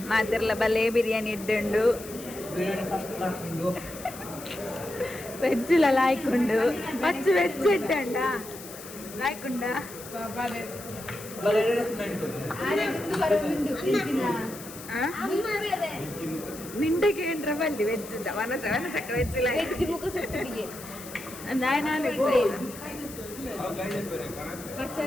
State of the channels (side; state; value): left; noise; hiss, 14 dB below the sound